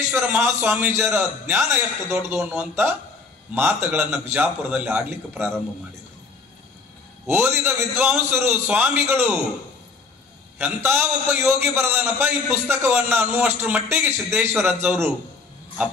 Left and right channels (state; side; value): quieter; right; 4.3 dB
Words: ಮಹಾಸ್ವಾಮೀಜಿಯರ ಜ್ಞಾನ ಎಷ್ಟು ದೊಡ್ಡದು ಅನ್ನುವಂತ ಮಾತುಗಳನ್ನ ಬಿಜಾಪುರದಲ್ಲಿ ಆಡ್ಲಿಕ್ಕೆ ಪ್ರಾರಂಭ ಮಾಡಿದರು. ಓದಿದ ವಿದ್ವಾಂಸರು, ಸ್ವಾಮಿಗಳು, ಎಂತ ಒಬ್ಬ ಯೋಗಿ ಬರದನಪ್ಪ ಈ ಪುಸ್ತಕವನ್ನ ಅನ್ನುವಷ್ಟರ ಮಟ್ಟಿಗೆ ಸಿದ್ದೇಶ್ವರ ಅಜ್ಜವರು ಆ